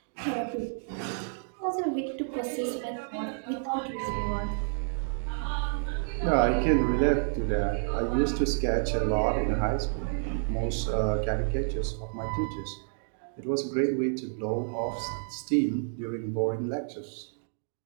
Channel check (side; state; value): left; silent; digital silence